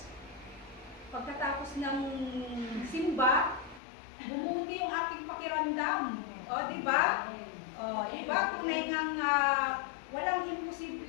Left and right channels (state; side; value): drops out; right; at 3.8 s